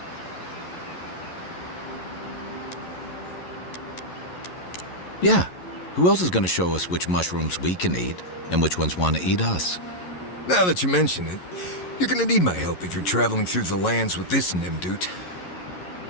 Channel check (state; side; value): late; right; 11 ms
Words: Yeah. Who else is going to show us which mushrooms we can eat and which ones want to eat us? Now that you mention it, you're gonna need my help if you're traveling through the lands with this Nimdude.